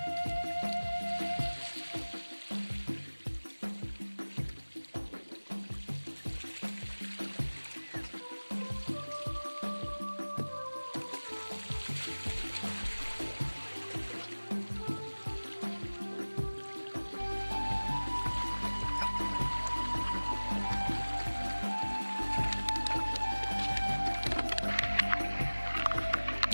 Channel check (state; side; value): inverted; both; correlation -1.00